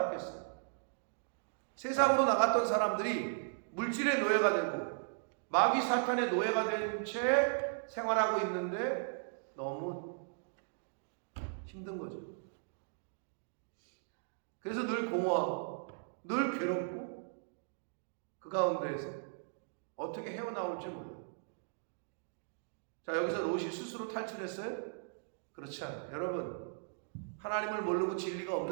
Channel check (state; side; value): silent; left; digital silence